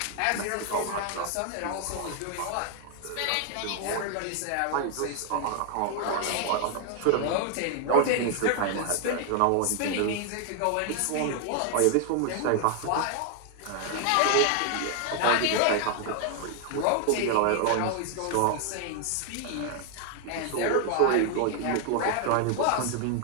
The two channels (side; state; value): both; different; correlation 0.00